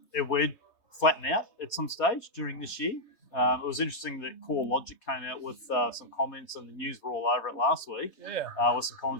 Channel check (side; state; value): right; late; 3.2 ms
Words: it would flatten out at some stage during this year. It was interesting that Core Logic came out with some comments, and the news were all over it last week. Yeah. With some